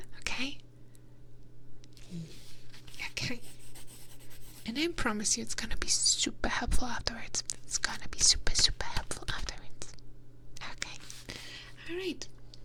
okay? Okay. And I promise you it's gonna be super helpful afterwards. It's gonna be super, super helpful afterwards. Okay. Alright.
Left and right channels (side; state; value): both; identical; correlation 1.00